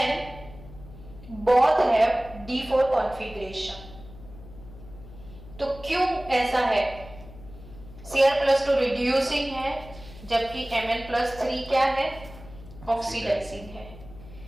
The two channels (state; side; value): noise; left; hum, 17 dB below the sound